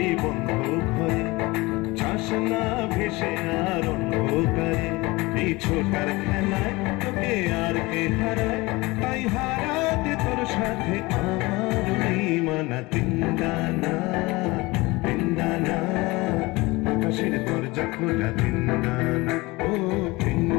বন্ধ ঘরে, যাস না ভেসে আর অন্ধকারে। এই ছোটার খেলায় তোকে আর কে হারায়, তাই হারাতে তোর সাথে আমার মানা তিনদানা। আকাশের দরজা খোলা তিনদানা, ও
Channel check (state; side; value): quieter; right; 22.6 dB